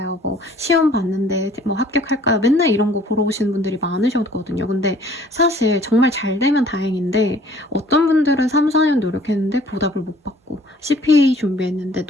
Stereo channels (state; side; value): normal; both; correlation 0.55